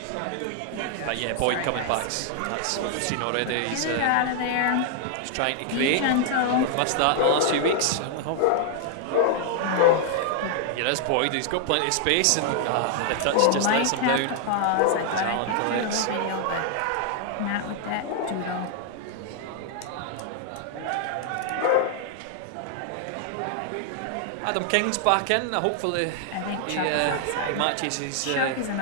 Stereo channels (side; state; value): both; different; correlation 0.00